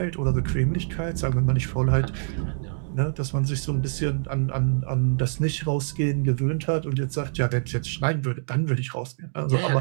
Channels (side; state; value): left; silent; digital silence